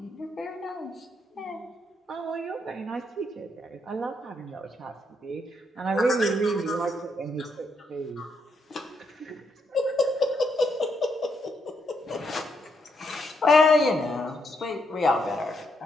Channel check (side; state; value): both; normal; correlation 0.77